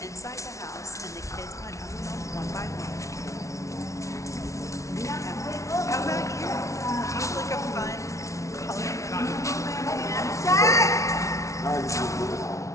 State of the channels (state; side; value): late; right; 0.15 ms